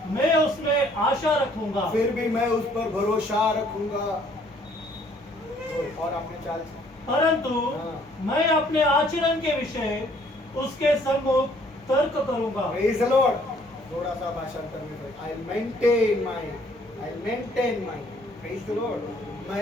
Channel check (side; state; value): both; normal; correlation 0.62